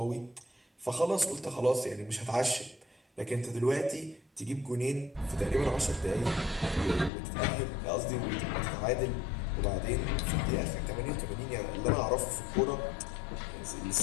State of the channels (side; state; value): right; drops out; at 7.1 s